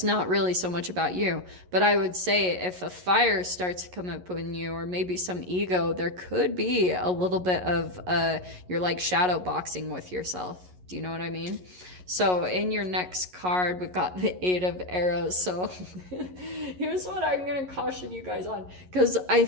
not really so much about you. But I would say if a fire starts to come up in you, or maybe some ego, there could be a little bit of you're like shadow boxing with yourself. Do you know what I mean? So in your next card, we've got the Eight of Arrows. So here's what I'm going to caution you guys on. Because I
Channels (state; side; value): late; left; 11 ms